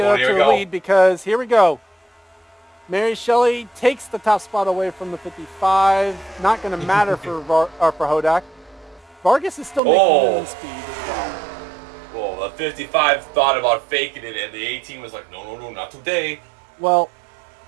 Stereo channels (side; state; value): left; drops out; at 9.8 s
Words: up to the lead because here we go. Mary Shelley takes the top spot away from the 55. Not going to matter for Hodak. Vargas is still making minimum speed as well. Well, the 55 thought about faking it, and the 18 was like, no, not today. Well,